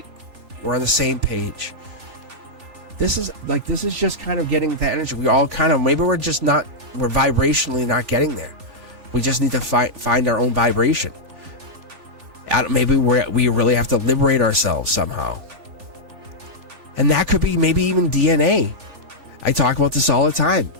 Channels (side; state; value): left; late; 3.5 ms